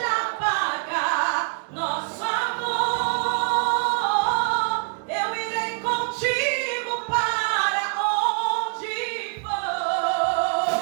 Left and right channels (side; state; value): left; quieter; 37.0 dB